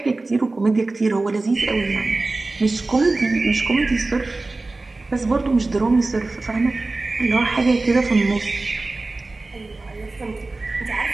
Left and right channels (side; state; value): left; quieter; 3.3 dB